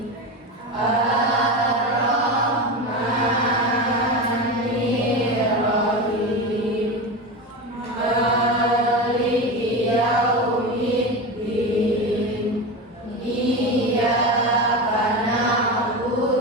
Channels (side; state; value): both; normal; correlation 0.22